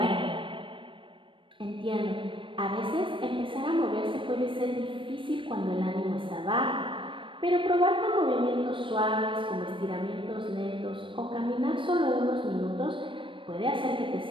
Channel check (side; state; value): left; late; 0.25 ms